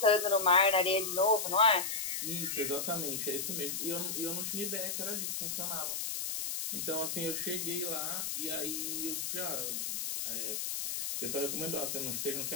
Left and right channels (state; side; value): noise; left; hiss, 2 dB below the sound